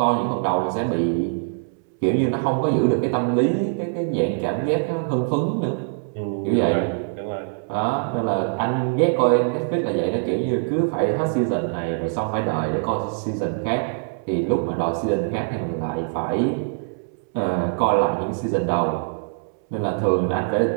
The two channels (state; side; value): silent; left; 63 dB below the other